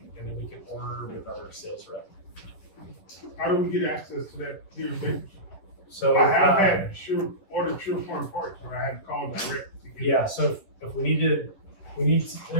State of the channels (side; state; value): right; late; 11 ms